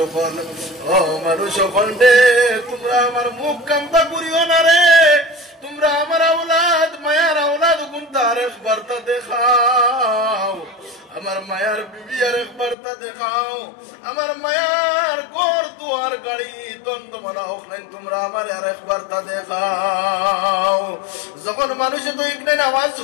ও মানুষ সকল রে, তোমরা আমার মুখ কামতা করিও না রে, তোমরা আমার আওলাদ মায়ার আওলাদ গুনতা আর একবার তা দেখাও, আমার মায়ার বিবি আর একবার তা দেখাও, আমার মায়ার ঘর দুয়ার গাড়ি দ্বন্দ্বমালা হোক নাই, তোমরা আমার আর একবার তা দেখাও। যখন মানুষে তো ইকনাইন আওয়াজ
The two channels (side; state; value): right; drops out; at 12.8 s